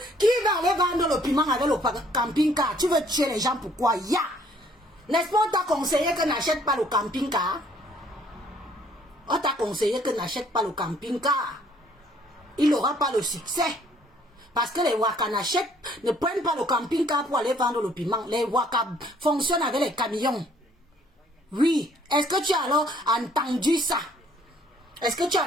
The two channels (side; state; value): both; normal; correlation 0.62